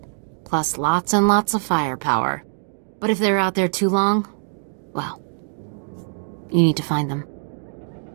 Plus lots and lots of firepower. But if they're out there too long, well, you need to find them.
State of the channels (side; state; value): left; silent; 63 dB below the other